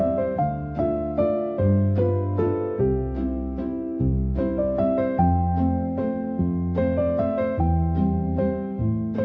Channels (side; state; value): both; identical; correlation 1.00